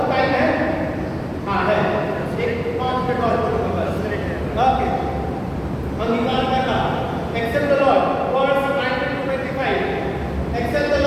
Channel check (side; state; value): both; identical; correlation 1.00